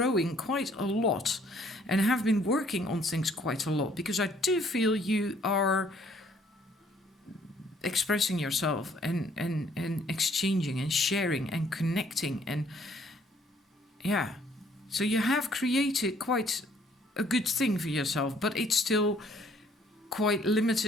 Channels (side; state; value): both; normal; correlation 0.62